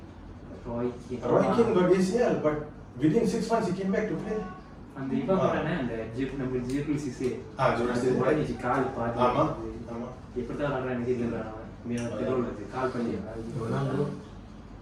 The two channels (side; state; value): both; identical; correlation 1.00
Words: got ACL but within 6 months he came back to play. அந்த இவ போறானே அந்த நம்ம Geophysics உடனே கால் பாதி ஆமா எப்படி தான் ஆடுறானே தெரியல மேல தெருவுல கால் பண்ணி